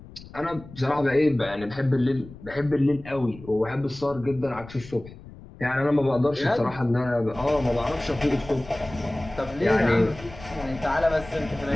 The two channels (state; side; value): noise; left; rumble, 17 dB below the sound